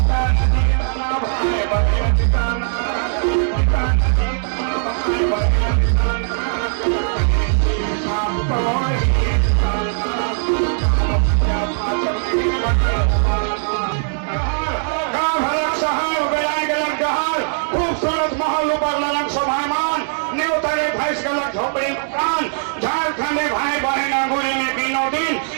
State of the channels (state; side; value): silent; left; digital silence